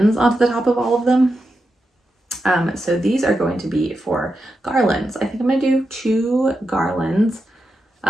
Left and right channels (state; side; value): normal; both; correlation 0.88